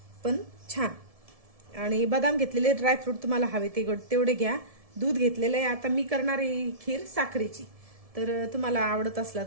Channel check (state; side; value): late; left; 1.7 ms